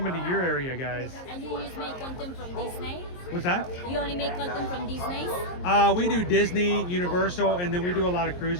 to your area, guys. And you just make content from Disney? What's that? You only make content from Disney? We do Disney, Universal, and then we do a lot of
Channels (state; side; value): late; right; 22 ms